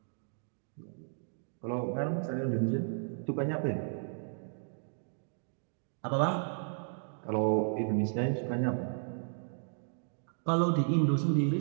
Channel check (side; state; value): left; silent; digital silence